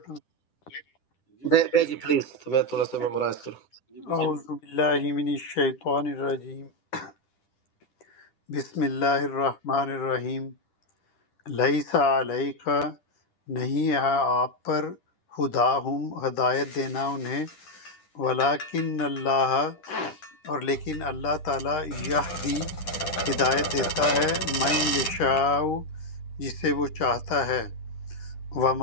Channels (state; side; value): late; right; 10 ms